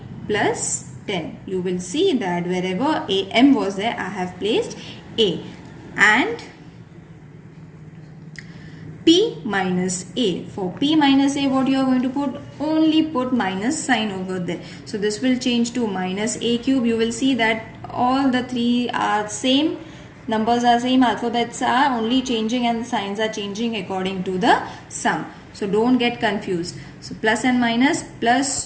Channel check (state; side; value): identical; both; correlation 1.00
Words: plus 10. You will see that wherever m was there, I have placed a. And p minus a. For p minus a, what you are going to put? Only put minus sign over there. So this will change to minus a cube. You will see that all the three are same. Numbers are same. Alphabets are only changing and the signs are changing according to the sum. So don't get confused. So plus and minus,